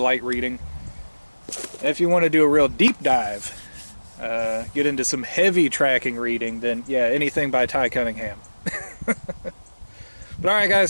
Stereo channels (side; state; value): both; inverted; correlation -1.00